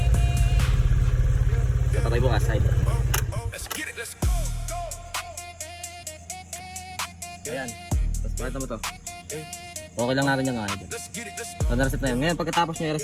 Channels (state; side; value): identical; both; correlation 1.00